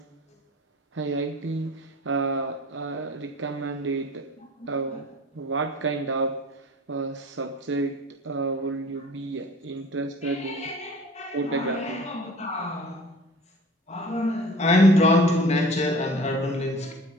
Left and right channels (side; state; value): both; normal; correlation 0.43